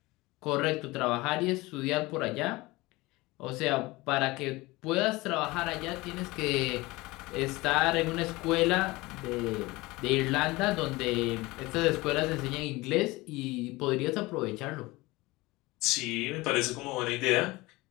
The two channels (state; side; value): quieter; right; 21.5 dB